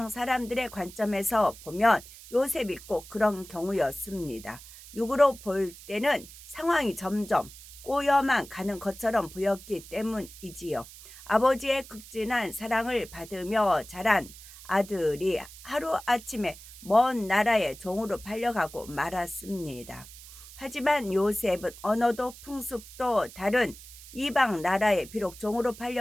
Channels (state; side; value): noise; right; hiss, 17 dB below the sound